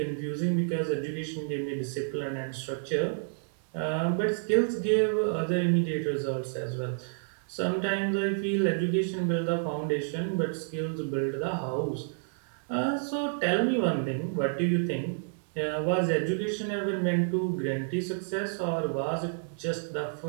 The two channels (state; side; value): silent; left; digital silence